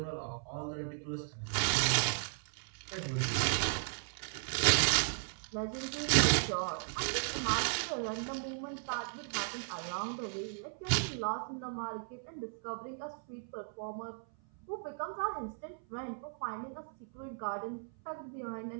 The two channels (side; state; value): left; silent; 54 dB below the other